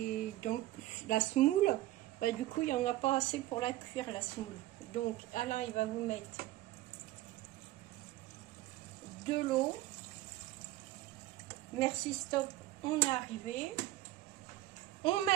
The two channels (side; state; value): left; quieter; 16.4 dB